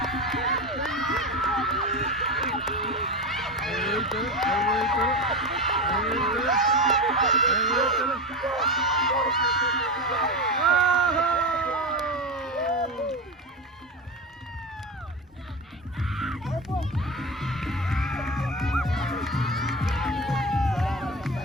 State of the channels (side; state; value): both; normal; correlation 0.21